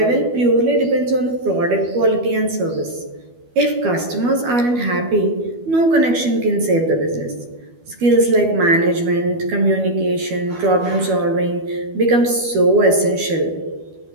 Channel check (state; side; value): late; left; 12 ms